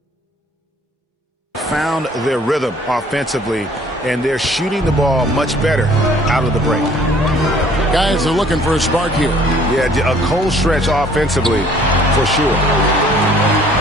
found their rhythm offensively, and they're shooting the ball much better out of the break. Guys are looking for a spark here. Yeah, a cold stretch offensively, for sure.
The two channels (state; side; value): normal; both; correlation 0.57